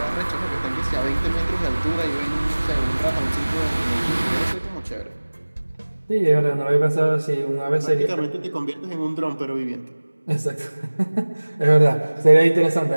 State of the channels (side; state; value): both; inverted; correlation -1.00